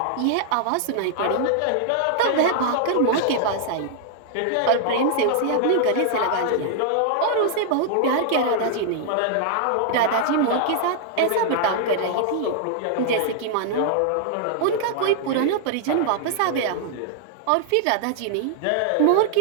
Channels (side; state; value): both; different; correlation -0.01